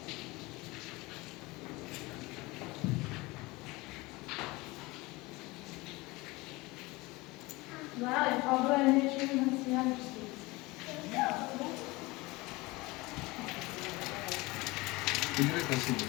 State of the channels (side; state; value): right; quieter; 22.5 dB